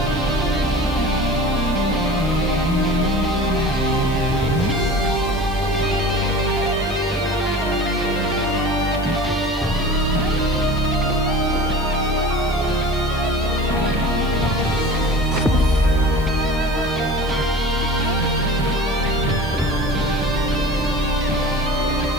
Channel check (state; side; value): noise; right; hiss, 22 dB below the sound